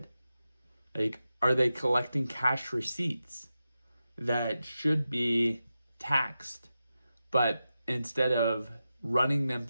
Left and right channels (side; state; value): both; inverted; correlation -0.91